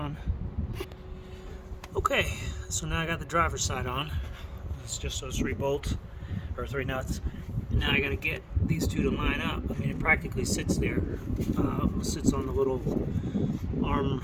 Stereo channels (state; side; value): identical; both; correlation 1.00